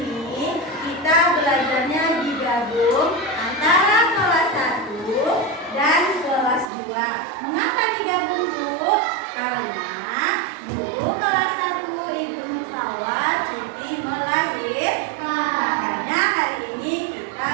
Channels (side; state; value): left; drops out; at 6.7 s